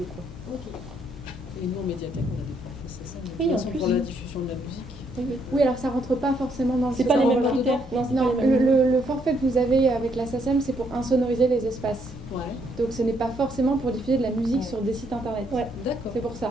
quoi. Ok. Et nous, en médiathèque, on a des forfaits, c'est ça. Oui, en plus. Pour la diffusion de la musique. Oui, alors ça rentre pas forcément dans le... C'est pas les mêmes critères. Non, c'est non, pas les mêmes. le forfait que vous avez avec la SACEM, c'est pour insonoriser les espaces. Ouais. Donc ce n'est pas forcément pour diffuser de la musique sur des sites internet. Ouais, d'accord. C'est pour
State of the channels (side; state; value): both; normal; correlation 0.72